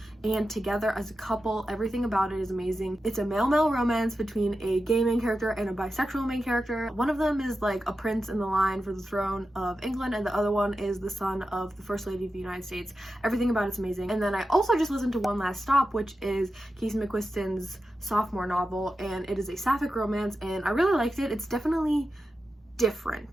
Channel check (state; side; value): normal; both; correlation 0.91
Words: and together as a couple. Everything about it is amazing. It's a male-male romance between a gay main character and a bisexual main character. One of them is like a prince in the line for the throne of England, and the other one is the son of the First Lady of the United States. Everything about it's amazing. And then I also just listened to One Last Stop, which is Casey McQuiston's sophomore novel, and it is a sapphic romance, and I really liked it. It's definitely